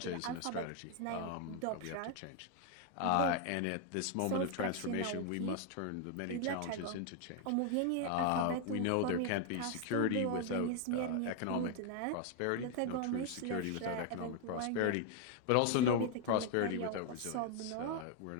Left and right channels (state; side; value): different; both; correlation 0.01